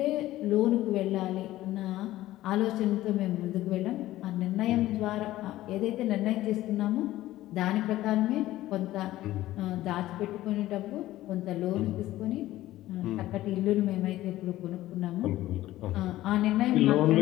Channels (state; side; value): quieter; right; 15.4 dB